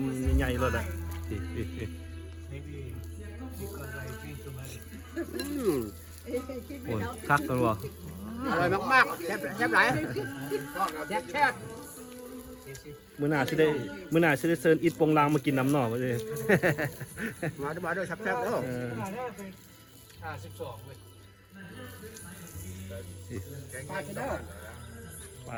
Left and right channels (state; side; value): identical; both; correlation 1.00